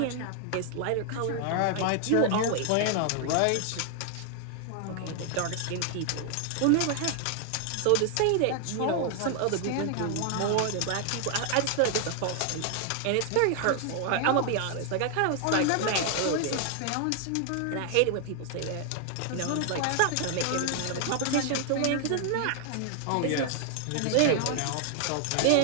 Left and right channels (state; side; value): different; both; correlation 0.00